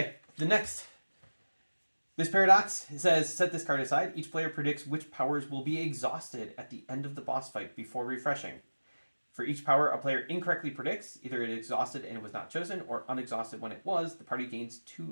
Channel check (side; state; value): both; inverted; correlation -1.00